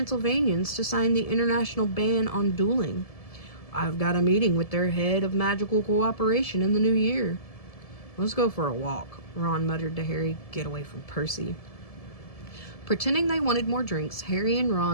to sign the international ban on dueling. I've got a meeting with their head of magical cooperation in the new year." "Let's go for a walk," Ron muttered to Harry. "Get away from Percy." Pretending they wanted more drinks, Harry and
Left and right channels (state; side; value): late; right; 1.7 ms